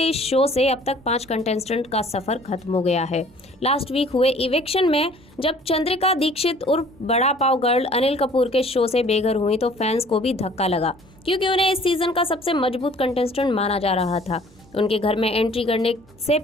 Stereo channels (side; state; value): both; normal; correlation 0.53